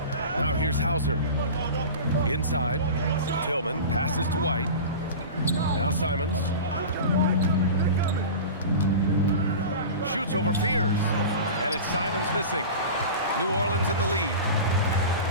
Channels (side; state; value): both; inverted; correlation -0.31